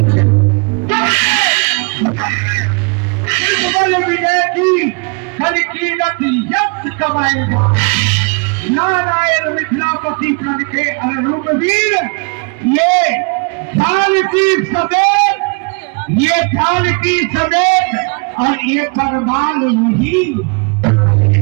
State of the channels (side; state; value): left; quieter; 32.7 dB